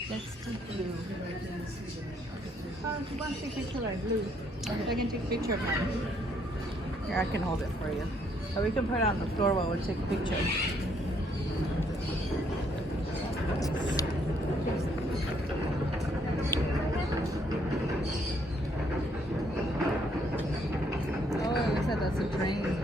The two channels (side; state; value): both; normal; correlation 0.69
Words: Let's do Blue. Oh, you want to take a picture of Blue? I can take a picture of mine. Here, I can hold it for you. Or we can put it on the floor while we take a picture. Oh, looks like that's a train.